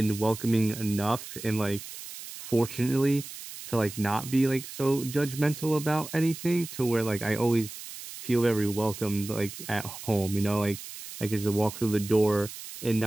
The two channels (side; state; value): right; noise; hiss, 12 dB below the sound